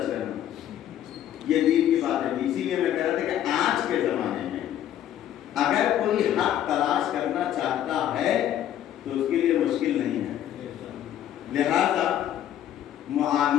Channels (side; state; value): right; quieter; 11.2 dB